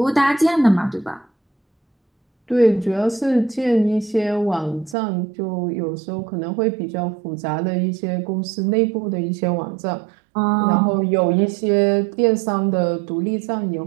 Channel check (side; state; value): left; drops out; at 5.0 s